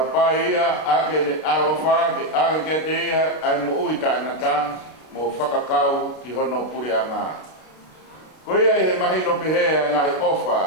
ake ne alofa ke ake ke teia ai mo uita nata mo whakakau ki hono puri anga koia he mahino pihea ngai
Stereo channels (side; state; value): right; late; 32 ms